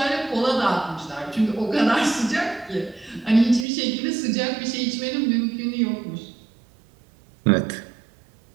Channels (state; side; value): drops out; left; at 3.7 s